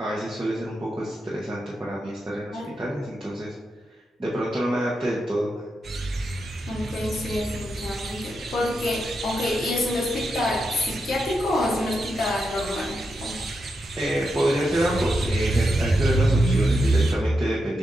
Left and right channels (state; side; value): normal; both; correlation 0.85